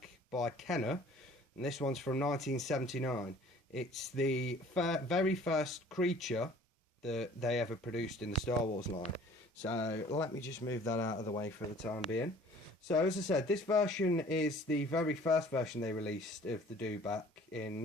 by Kenner, and this one's from 1979. It's the very first creature that they ever produced in the Star Wars line. So let me just move that out of the way for the time being. So as I said, this version is the very first version they released of the Dewback in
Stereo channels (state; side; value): normal; both; correlation 0.51